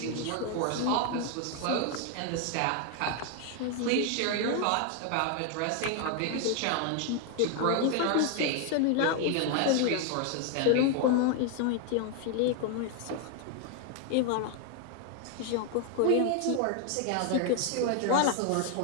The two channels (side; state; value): both; different; correlation 0.01